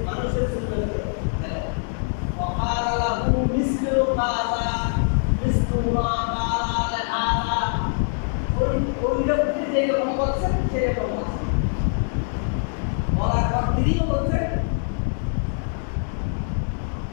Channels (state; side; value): silent; right; digital silence